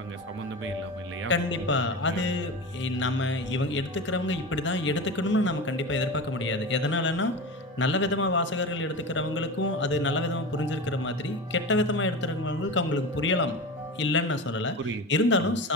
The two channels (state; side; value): normal; both; correlation 0.27